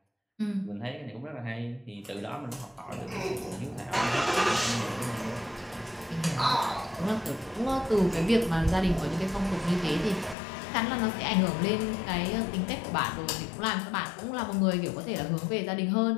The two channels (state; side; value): drops out; right; at 10.4 s